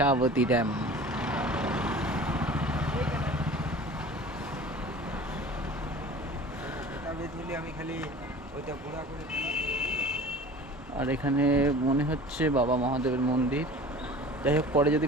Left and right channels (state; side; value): normal; both; correlation 0.41